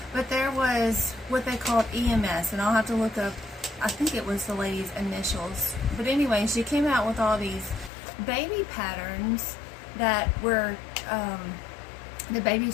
but there was what they called EMS, and I'll have to look up, I think it was the lady's initials. But anyway, she came out with all these baby patterns that were, the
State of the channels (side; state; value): right; drops out; at 7.9 s